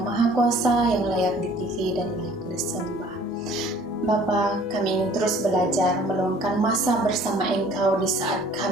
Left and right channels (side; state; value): both; normal; correlation 0.53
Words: Kuasa, yang layak ditinggi dan layak disembah. Bapa, kami ingin terus belajar meluangkan masa bersama Engkau di saat